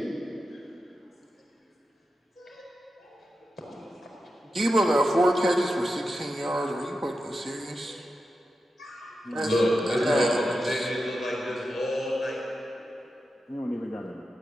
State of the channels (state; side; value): normal; both; correlation 0.90